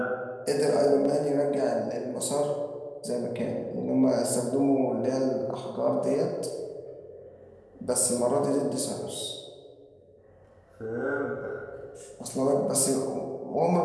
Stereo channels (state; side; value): identical; both; correlation 1.00